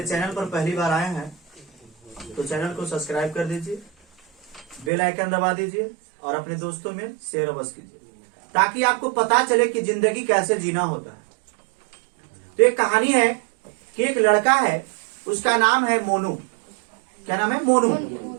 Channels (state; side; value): drops out; left; at 4.9 s